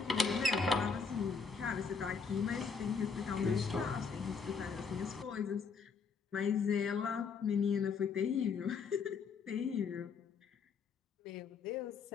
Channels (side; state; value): right; quieter; 5.4 dB